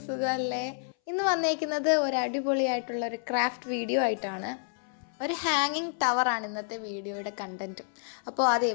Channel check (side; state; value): right; silent; 58 dB below the other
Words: സുഖമല്ലേ? ഇന്ന് വന്നേക്കുന്നത് ഒരു അടിപൊളിയായിട്ടുള്ള ഒരു ക്രാഫ്റ്റ് വീഡിയോ ആയിട്ടാണ്. ഒരു ഹാങ്ങിങ് ടവറാണ് ഇന്നത്തെ വീഡിയോയുടെ കണ്ടൻറ്റ്. അപ്പോൾ അത്